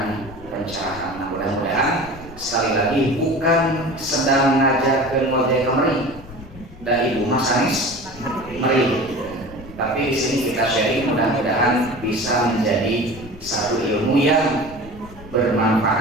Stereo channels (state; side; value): noise; left; rumble, 18 dB below the sound